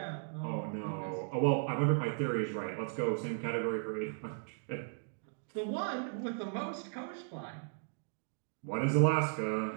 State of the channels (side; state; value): left; silent; digital silence